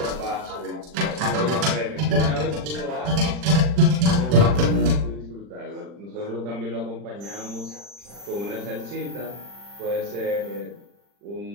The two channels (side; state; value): left; late; 40 ms